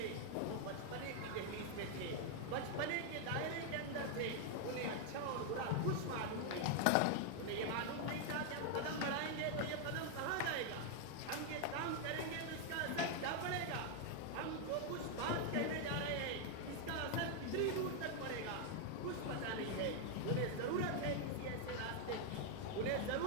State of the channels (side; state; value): both; different; correlation 0.00